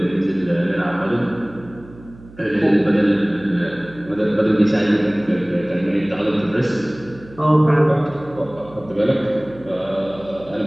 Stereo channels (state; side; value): noise; right; hum, 21 dB below the sound